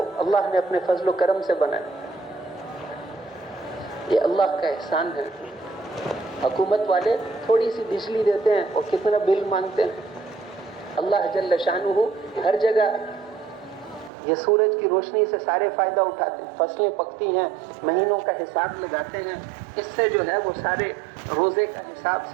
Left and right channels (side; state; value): left; drops out; at 14.1 s